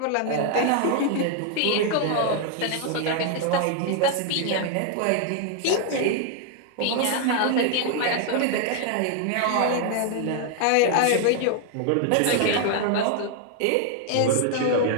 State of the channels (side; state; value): both; different; correlation 0.00